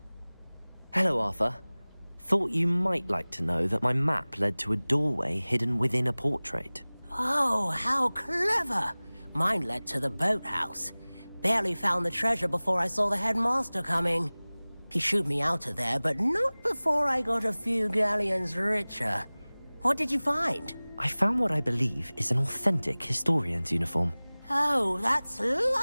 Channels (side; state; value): both; inverted; correlation -1.00